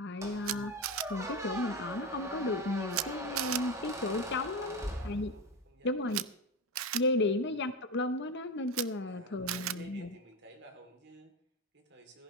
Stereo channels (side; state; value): both; normal; correlation 0.19